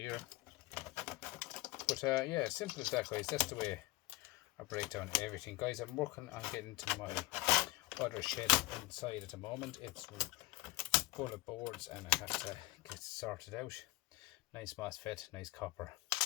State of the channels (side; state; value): right; quieter; 20.0 dB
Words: But yeah, simple as that, guys. That's the way I break down everything, guys. I'm working on getting to my other shed inside at the moment. It's full of boards and I have to get sorted out. Nice MOSFET, nice copper.